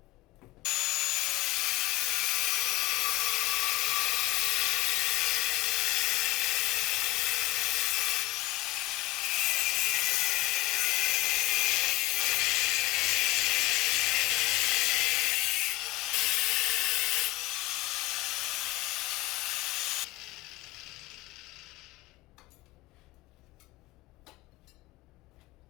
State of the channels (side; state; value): right; quieter; 19.2 dB